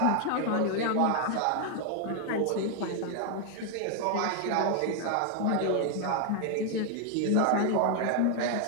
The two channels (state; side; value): different; both; correlation 0.00